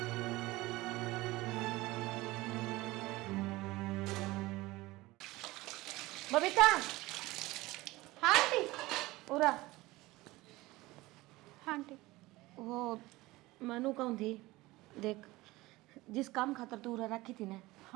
बबीता, हाँ आंटी। उरा हाँ आंटी। वो मनु कौन थी, देख जिस काम खातर तू उरा रखी थी ना,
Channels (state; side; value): quieter; left; 19.7 dB